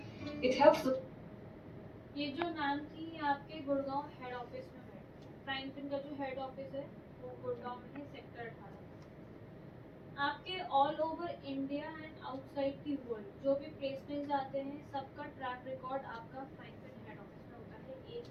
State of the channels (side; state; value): both; identical; correlation 1.00